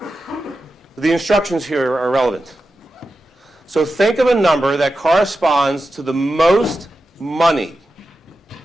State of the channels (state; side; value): normal; both; correlation 0.91